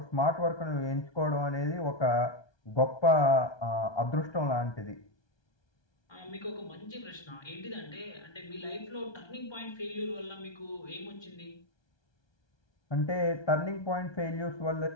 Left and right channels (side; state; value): right; late; 1.2 ms